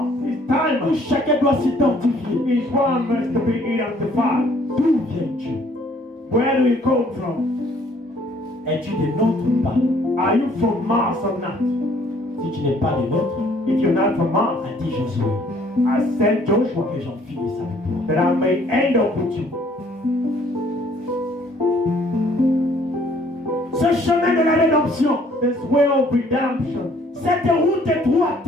It's time. où chacun doit s'identifier. Each one must be identified. D'où viens-tu? Where do you come from? Es-tu des nôtres ou pas? Are you from Mars or not? Si tu n'es pas des nôtres, If you're not from Mars, a dit Josué, I sent Joshua que j'en finisse avec toi. that I may end up with you. Ce chemin de la rédemption, This way of redemption, cette route étroite,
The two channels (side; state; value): both; normal; correlation 0.60